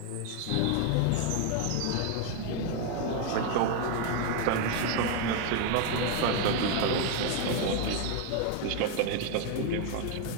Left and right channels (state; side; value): different; both; correlation 0.01